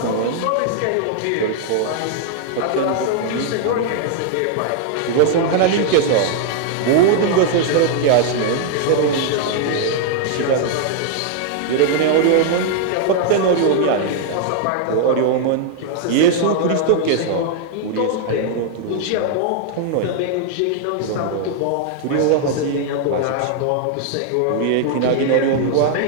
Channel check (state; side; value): different; both; correlation -0.01